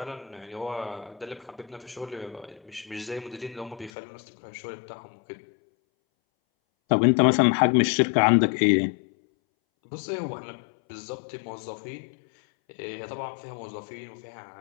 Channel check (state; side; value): drops out; right; at 3.9 s